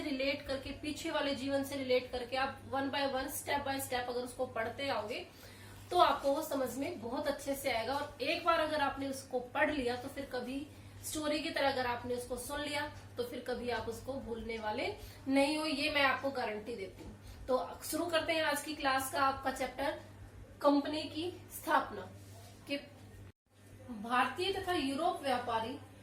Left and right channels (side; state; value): both; identical; correlation 1.00